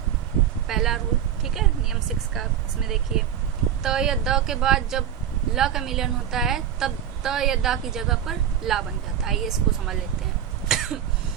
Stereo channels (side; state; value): left; quieter; 9.6 dB